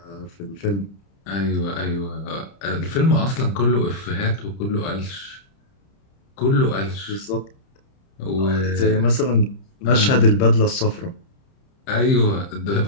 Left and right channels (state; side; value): late; right; 30 ms